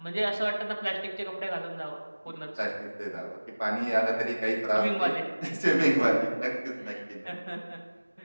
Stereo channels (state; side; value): inverted; both; correlation -1.00